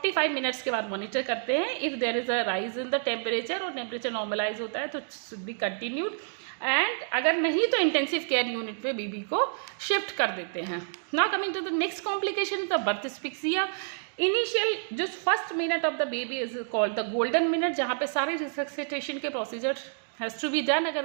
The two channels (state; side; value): silent; left; digital silence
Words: minutes के बाद मॉनिटर करते हैं। If there is a rise in the temperature और टेम्परेचर नॉर्मलाइज होता है तो शुड बी कंटिन्यूड, एंड अगर नहीं तो इंटेंसिव केयर यूनिट में बेबी को शिफ्ट कर देते हैं। Now coming to the next complication, the birth asphyxia. Initial जो first minute of the baby is called the golden minute, जहाँ पे सारे रिसक्सिटेशन के procedure has to be done.